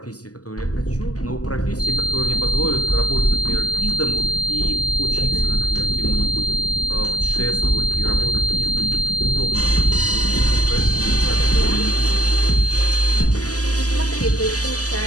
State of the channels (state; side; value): late; right; 0.67 ms